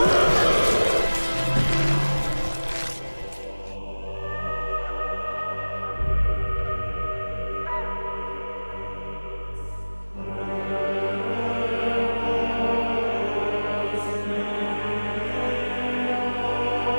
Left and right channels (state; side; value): inverted; both; correlation -1.00